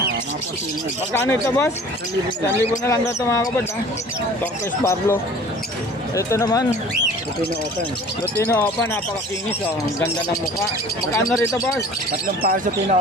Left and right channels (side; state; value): both; normal; correlation 0.46